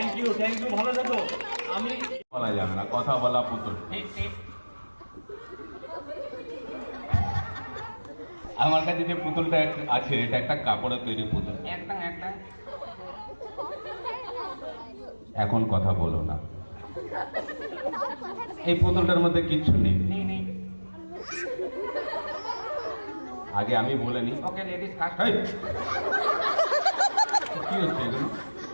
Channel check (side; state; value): both; inverted; correlation -1.00